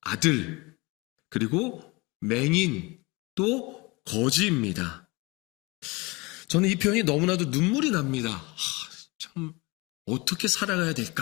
아들, 그리고 맹인, 또 거지입니다. 저는 이 표현이 너무나도 눈물이 납니다. 참 어떻게 살아가야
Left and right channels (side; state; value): right; quieter; 25.1 dB